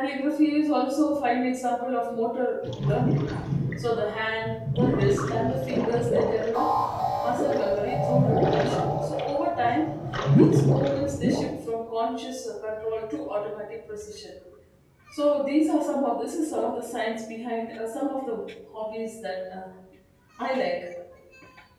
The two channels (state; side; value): identical; both; correlation 1.00